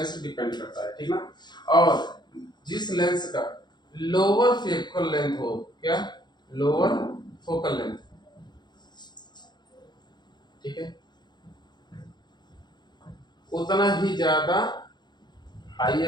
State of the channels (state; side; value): late; right; 0.21 ms